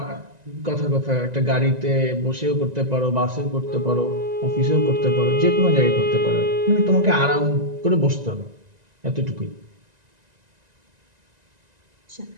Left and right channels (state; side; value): late; left; 1.9 ms